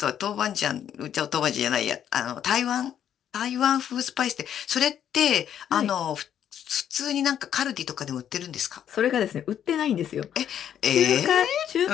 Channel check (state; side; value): quieter; right; 9.7 dB